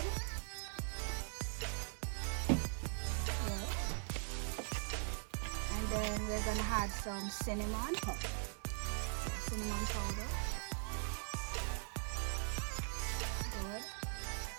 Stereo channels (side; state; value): left; silent; 50 dB below the other